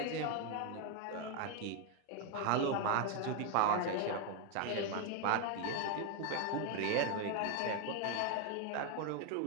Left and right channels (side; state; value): both; different; correlation 0.01